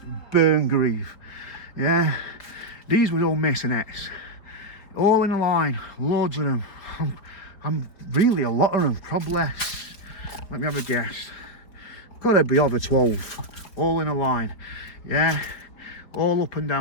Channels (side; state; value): right; late; 4.6 ms